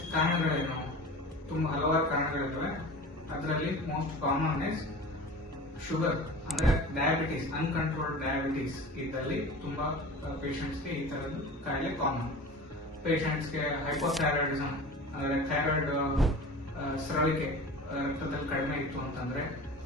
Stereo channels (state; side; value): normal; both; correlation 0.37